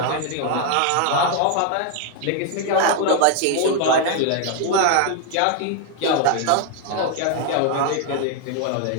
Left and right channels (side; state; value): both; different; correlation 0.01